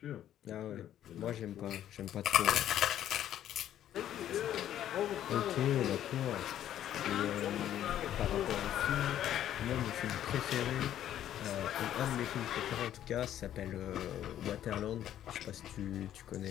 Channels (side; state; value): right; quieter; 11.3 dB